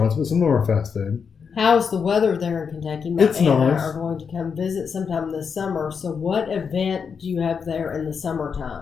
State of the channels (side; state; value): right; quieter; 6.2 dB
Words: but some of them are fast food. How's the weather there in Kentucky? My It's aunt and nice. I are going to come visit sometime this summer. So what event do you have there in the